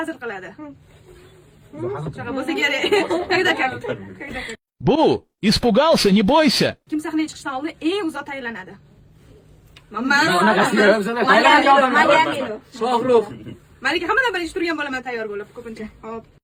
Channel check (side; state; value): both; identical; correlation 1.00